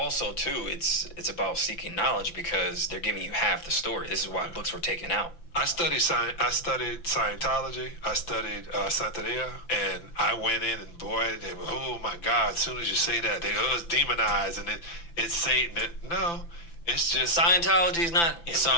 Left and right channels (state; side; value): late; right; 5.9 ms